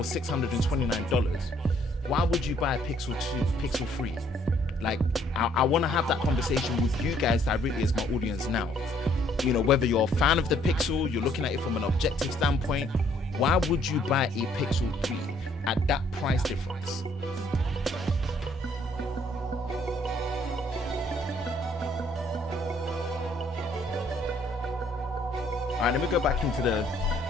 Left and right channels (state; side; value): normal; both; correlation 0.65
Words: $629? Why would you buy a Pixel 2, Pixel 3? Like, I want to have that conversation with you guys directly as my audience now. You know, whether you're a fan of the Pixel, you're looking at it from an objective standpoint, why would you buy a Pixel 3 at that price difference? All right, let me go back into the...